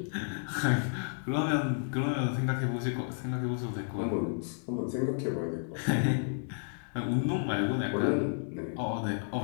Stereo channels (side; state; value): right; silent; 57 dB below the other